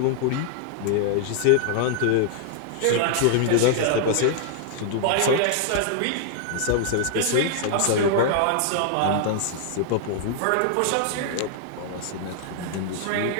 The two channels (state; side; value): different; both; correlation -0.01